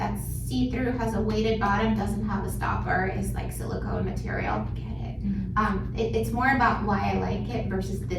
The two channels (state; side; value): identical; both; correlation 1.00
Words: see-through, has a weighted bottom, doesn't have a stopper, is like silicone material, get it. It's more about why I like it versus